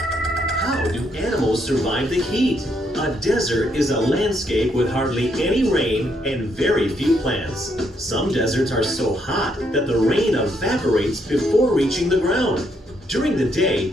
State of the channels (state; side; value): normal; both; correlation 0.74